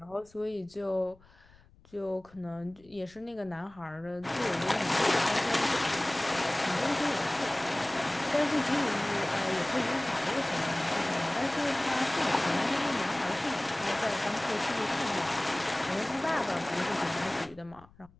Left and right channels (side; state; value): left; noise; rumble, 27 dB below the sound